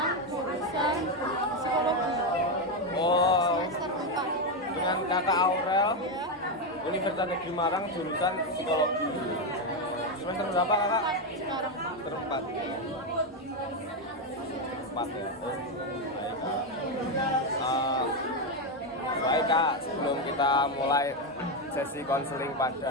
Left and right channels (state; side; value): normal; both; correlation 0.07